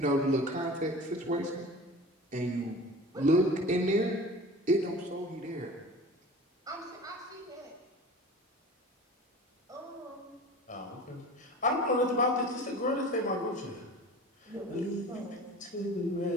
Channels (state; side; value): normal; both; correlation 0.38